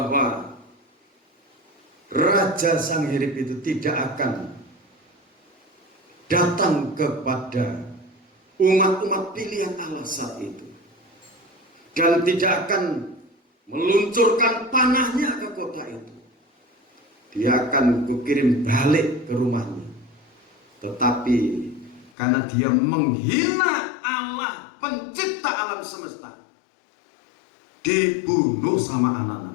Raja Sang Hirib itu tidak akan datang kepada umat-umat pilihan Allah saat itu, dan tidak akan meluncurkan panahnya ke kota itu. Dia akan kukirim balik ke rumahnya. Tetapi karena dia menghina Allah, pencipta alam semesta, dibunuh sama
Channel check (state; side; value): drops out; right; at 22.1 s